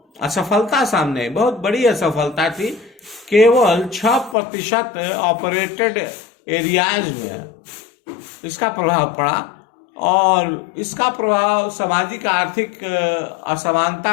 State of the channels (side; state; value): right; drops out; at 4.4 s